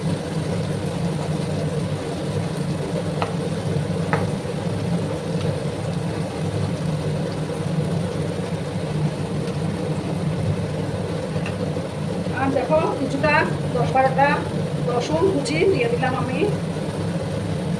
আর দেখো কিছুটা 10-12টা রসুন কুচি দিয়ে দিলাম আমি,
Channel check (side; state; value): both; identical; correlation 1.00